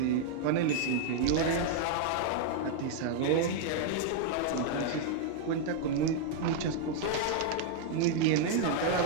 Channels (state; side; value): different; both; correlation 0.00